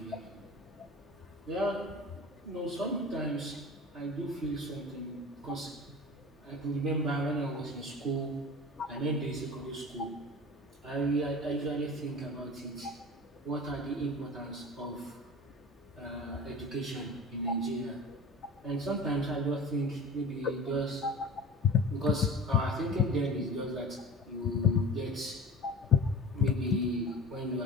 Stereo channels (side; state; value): both; normal; correlation 0.36